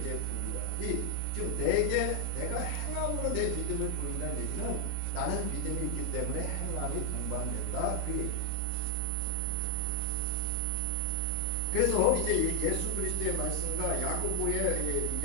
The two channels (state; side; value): different; both; correlation 0.00